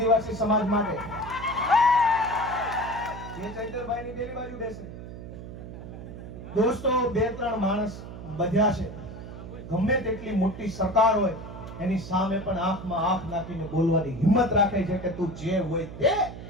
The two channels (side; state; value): right; noise; hum, 12 dB below the sound